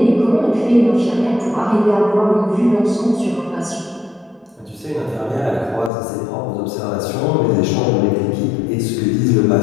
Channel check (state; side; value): drops out; right; at 5.9 s